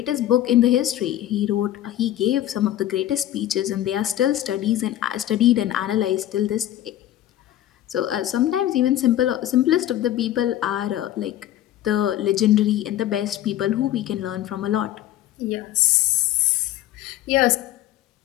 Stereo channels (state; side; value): quieter; right; 13.0 dB